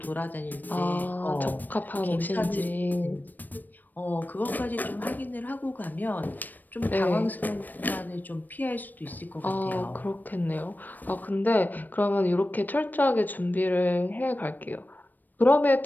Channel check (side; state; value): right; late; 0.088 ms